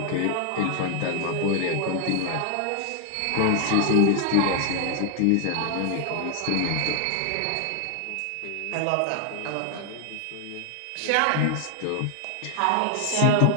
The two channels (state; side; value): different; both; correlation 0.00